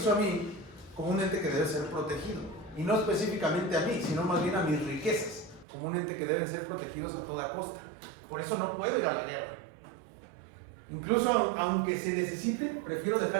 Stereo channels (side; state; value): left; drops out; at 5.7 s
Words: a mí como un ente que debe ser protegido. Y no específicamente a mí, sino más bien a mis riquezas, como un ente que deben ser protegidos a toda costa. Por eso no puedo ir a la guerra. Incluso aunque se necesite, prefiero